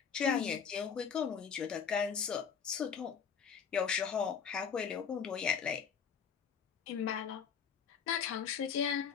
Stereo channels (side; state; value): right; quieter; 6.9 dB